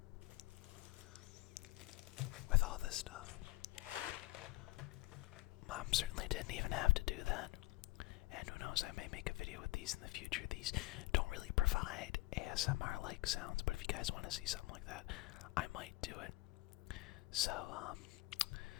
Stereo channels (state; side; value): quieter; right; 20.0 dB